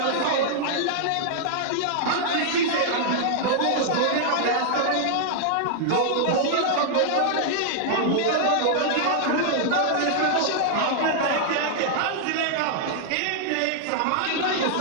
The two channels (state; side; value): different; both; correlation -0.01